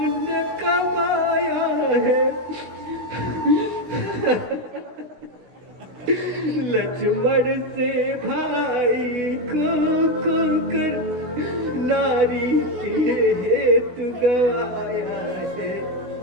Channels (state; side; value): late; left; 16 ms